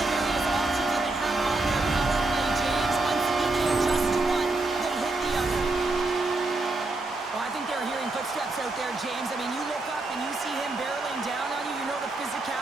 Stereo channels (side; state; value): left; quieter; 3.1 dB